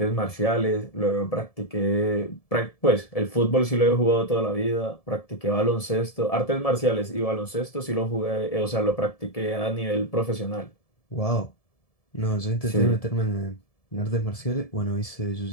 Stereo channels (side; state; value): right; late; 1.7 ms